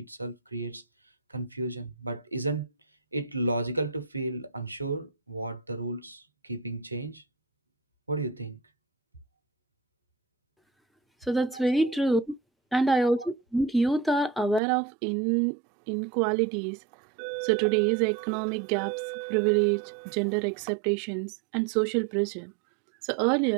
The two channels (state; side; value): drops out; left; at 14.6 s